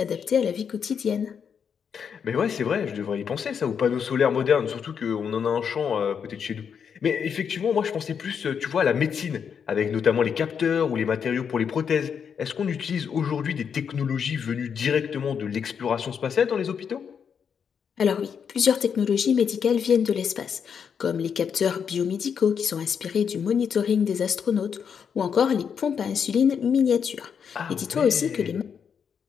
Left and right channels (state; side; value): quieter; right; 7.1 dB